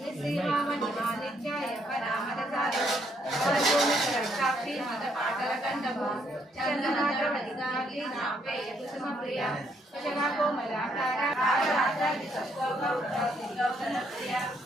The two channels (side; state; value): both; normal; correlation 0.72